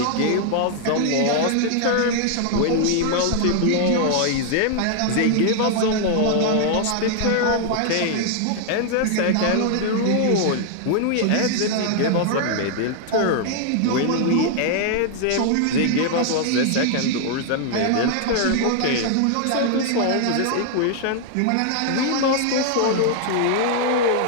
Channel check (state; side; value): different; both; correlation 0.00